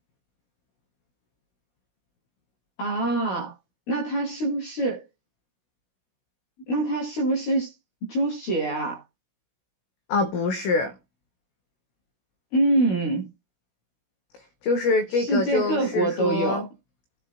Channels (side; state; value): right; late; 16 ms